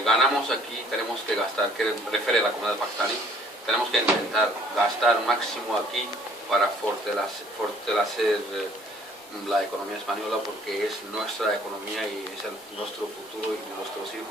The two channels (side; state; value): both; normal; correlation 0.58